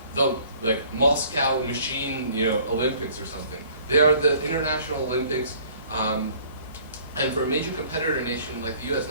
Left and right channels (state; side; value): inverted; both; correlation -0.55